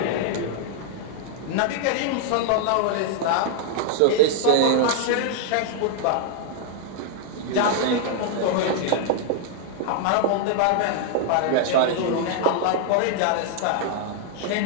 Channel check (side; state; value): both; different; correlation 0.00